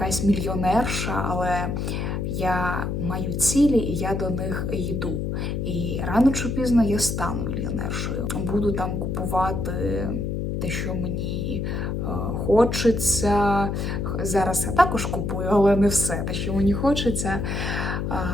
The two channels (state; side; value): noise; left; hum, 2 dB below the sound